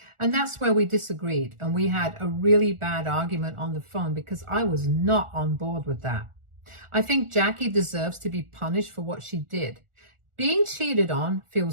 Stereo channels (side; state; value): left; late; 1.4 ms